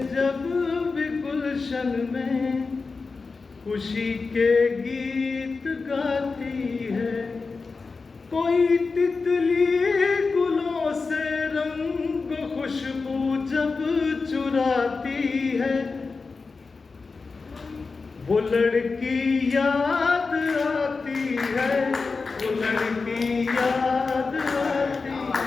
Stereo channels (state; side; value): quieter; right; 4.3 dB